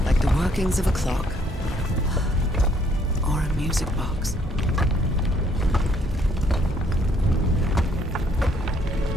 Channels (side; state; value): both; normal; correlation 0.66